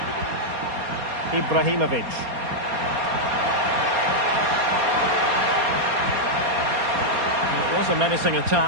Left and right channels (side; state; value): left; late; 4.3 ms